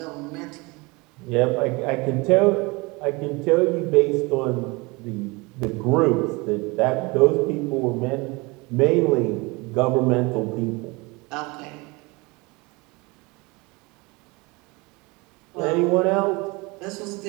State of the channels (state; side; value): quieter; left; 25.7 dB